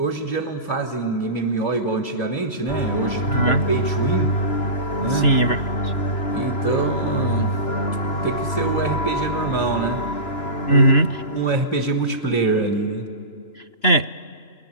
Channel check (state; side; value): late; right; 2.9 ms